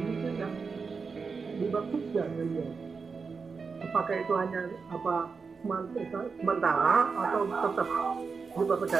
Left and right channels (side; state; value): left; quieter; 5.1 dB